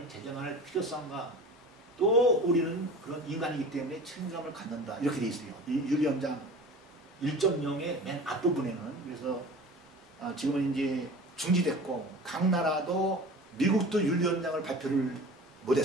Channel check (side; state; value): both; normal; correlation 0.38